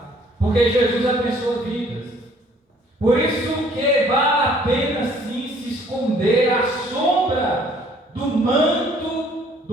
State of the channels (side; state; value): both; normal; correlation 0.59